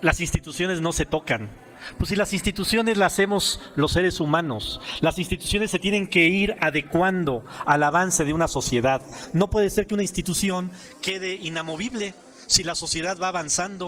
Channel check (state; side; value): identical; both; correlation 1.00